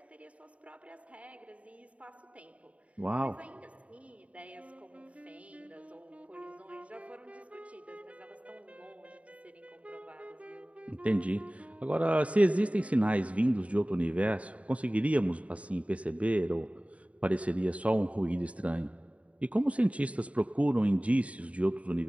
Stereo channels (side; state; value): left; late; 0.066 ms